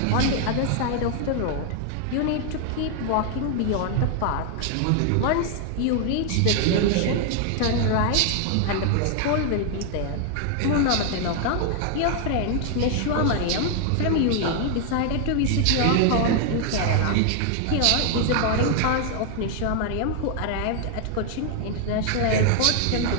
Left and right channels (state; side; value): different; both; correlation 0.00